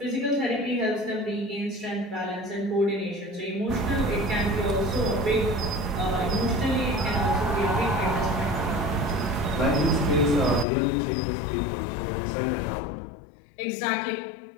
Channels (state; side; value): drops out; right; at 10.7 s